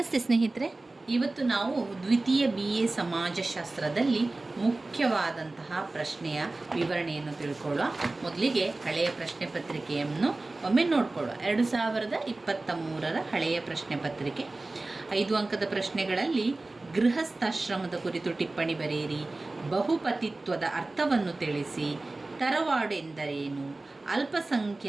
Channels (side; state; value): left; quieter; 3.1 dB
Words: ಸ್ನೇಹಿತರೆ, ಇವತ್ತು ನಾವು ದ್ವಿತೀಯ BA ಸಮಾಜಶಾಸ್ತ್ರದಲ್ಲಿ ಮುಖ್ಯವಾದಂತಹ ಪ್ರಶ್ನೆಯ ವಿವರಣೆಯನ್ನು ತಿಳ್ಕೊಳ್ಳುವ. ಮೊದಲಿಗೆ ಹಳೆಯ ಪ್ರಶ್ನೆ ಪತ್ರಿಕೆಯನ್ನು ಒಮ್ಮೆ ನೋಡಿಕೊಳ್ಳುವ. 2023ರ ಹಳೆಯ ಪ್ರಶ್ನೆ ಪತ್ರಿಕೆ 5 ಅಂಕದ ಪ್ರಶ್ನೆಗಳಲ್ಲಿ ಗೃಹಸ್ಥಾಶ್ರಮದ ಕುರಿತು ಟಿಪ್ಪಣಿ ಬರೆಯಿರಿ, ಬಹುಪತಿತ್ವದ ಅರ್ಥವನ್ನು ತಿಳಿಸಿ, ತರವಾಡು ಎಂದರೇನು,